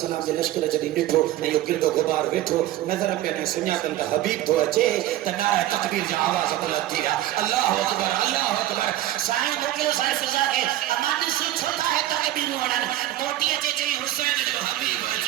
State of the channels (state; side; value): quieter; left; 14.1 dB